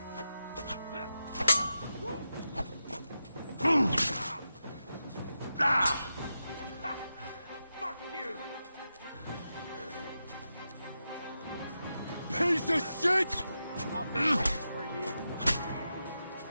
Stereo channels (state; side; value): inverted; both; correlation -0.89